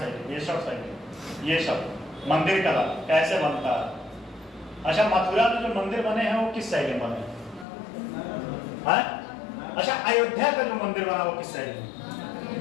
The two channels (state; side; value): drops out; right; at 7.7 s